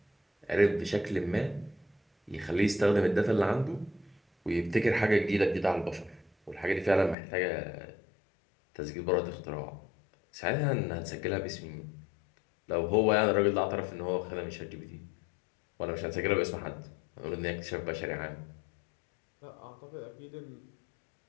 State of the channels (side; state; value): right; drops out; at 7.2 s